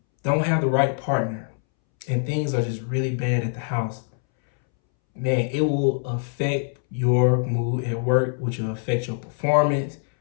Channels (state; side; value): silent; right; 63 dB below the other